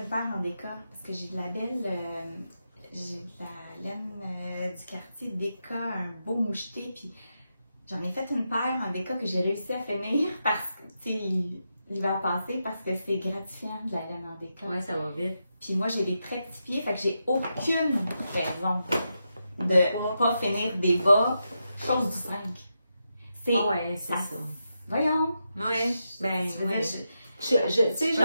paire en déca, parce que j'ai de la belle, j'ai de la laine du quartier déca, un beau moucheté, puis j'en ai fait une paire en déca que j'ai réussi à finir parce que, tu sais, l'hiver passé, parce que c'est gratifiant de la laine en déca. Ouais, ça va vite. Puis moi, j'ai des très petits pieds, fait que j'ai aucune raison de pas finir des bas, chose du 5. Ah ouais, c'est ça. Voyons. Ouais, oui. Tu sais,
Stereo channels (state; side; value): inverted; both; correlation -0.86